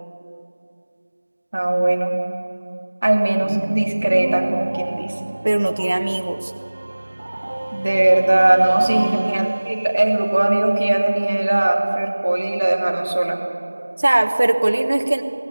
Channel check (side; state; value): both; inverted; correlation -1.00